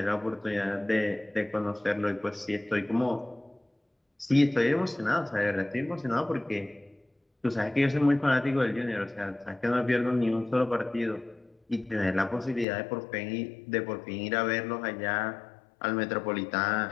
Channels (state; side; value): drops out; right; at 12.7 s